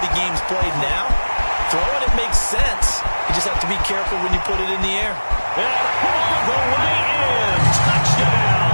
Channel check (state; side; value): inverted; both; correlation -1.00